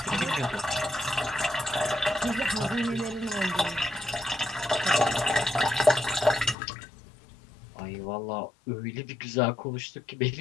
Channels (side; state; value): right; drops out; at 6.6 s